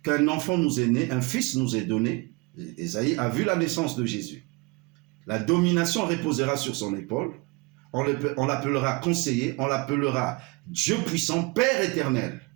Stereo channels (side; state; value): left; quieter; 26.0 dB